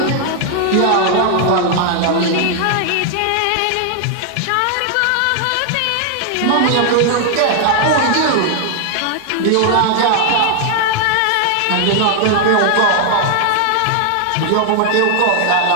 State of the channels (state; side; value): different; both; correlation 0.00